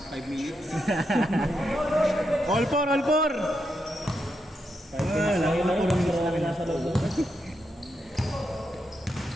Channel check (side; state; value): both; normal; correlation 0.83